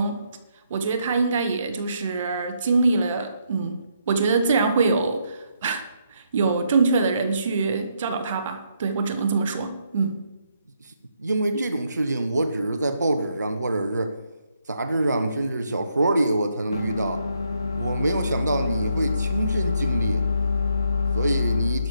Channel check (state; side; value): inverted; both; correlation -0.76